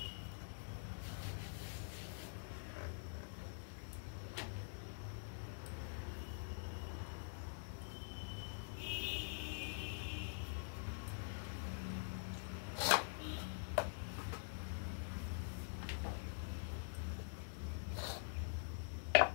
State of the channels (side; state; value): right; silent; digital silence